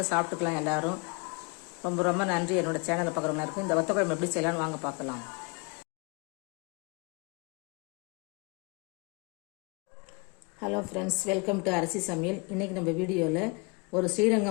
சாப்பிட்டுக்கலாம் எல்லாரும். ரொம்ப ரொம்ப நன்றி என்னோட சேனலை பார்க்குறவங்க இருக்கும். இந்த வத்த குழம்பு எப்படி செய்யலாம்னு வாங்க பார்க்கலாம். ஹலோ ஃப்ரெண்ட்ஸ், வெல்கம் டு அரிசி சமையல். இன்றைக்கி நம்ம வீடியோவில் ஒரு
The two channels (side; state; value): right; quieter; 31.2 dB